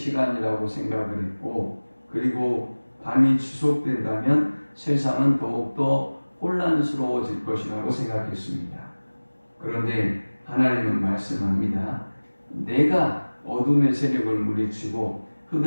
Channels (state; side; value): inverted; both; correlation -1.00